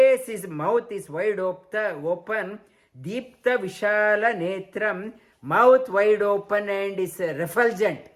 is, mouth is wide open. Deepta Vishala Netram, mouth wide open and is refulgent.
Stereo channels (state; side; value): identical; both; correlation 1.00